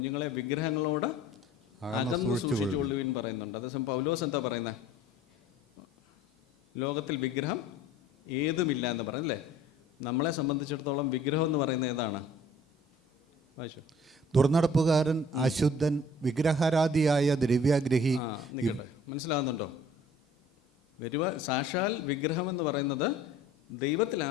വിഗ്രഹങ്ങളോട് അകന്നു സൂക്ഷിച്ചുകൊള്ളുവിൻ പറയുന്നുണ്ട്. അതേസമയം പൗലോസ് എന്താ പറയുന്നത്? ലോകത്തിൽ വിഗ്രഹം ഏതുമില്ല എന്ന് പറയുന്നല്ലേ. നമ്മളെ സംബന്ധിച്ചിടത്തോളം വിഗ്രഹം എന്ന് പറയുന്നത് ഏതാണ്? വായിച്ചു. ദുർനടപ്പുകാരൻ, അശുദ്ധൻ, വിഗ്രഹാരാധിയായ ദ്രവ്യാഗ്രഹി. നിൽക്കട്ടെ, മനസ്സിലാകുന്നുണ്ടോ? സാക്ഷാൽ വിഗ്രഹം എന്ന് പറയുന്നത് ദൈവത്തിൽ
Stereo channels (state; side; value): normal; both; correlation 0.51